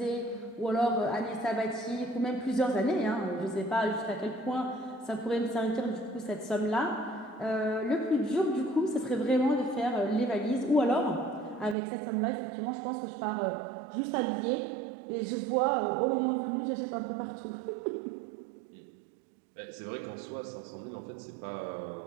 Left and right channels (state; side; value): drops out; left; at 11.8 s